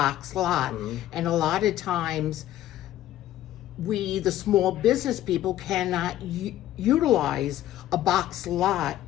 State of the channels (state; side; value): quieter; right; 13.2 dB